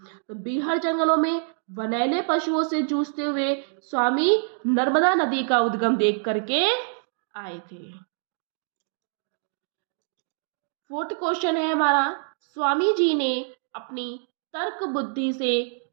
तो बीहड़ जंगलों में वनैले पशुओं से जूझते हुए स्वामी नर्मदा नदी का उद्गम देख करके आए थे। फोर्थ क्वेश्चन है हमारा, स्वामी जी ने अपनी तर्क बुद्धि से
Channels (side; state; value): left; silent; 61 dB below the other